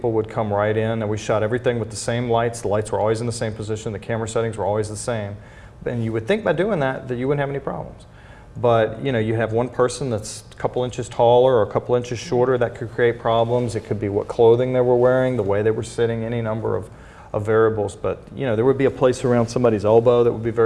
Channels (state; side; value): identical; both; correlation 1.00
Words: would come right in, and we shot everything with the same lights. The lights were always in the same position. The camera settings were always the same. And you would think by doing that you wouldn't have any problems. But you know, you have one person that's a couple inches taller or a couple inches shorter, that could create problems. It could be what clothing they were wearing, the way they were sitting, any number of variables. But you know, there would be a place around somebody's elbow that would be